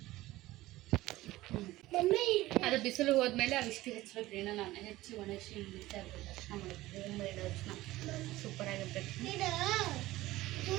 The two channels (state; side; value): quieter; left; 17.3 dB